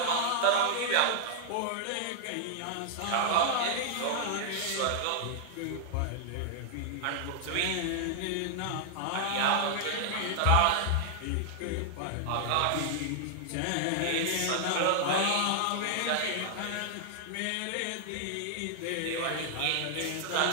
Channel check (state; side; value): different; both; correlation -0.01